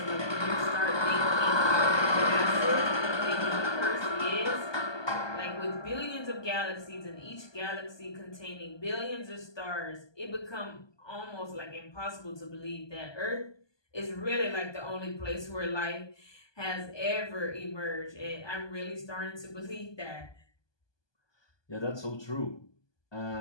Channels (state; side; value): late; right; 1.2 ms